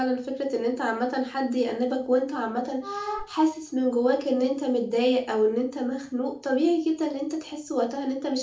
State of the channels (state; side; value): identical; both; correlation 1.00